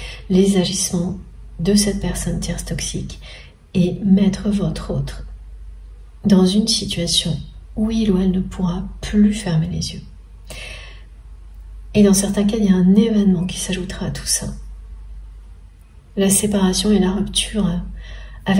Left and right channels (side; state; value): both; identical; correlation 1.00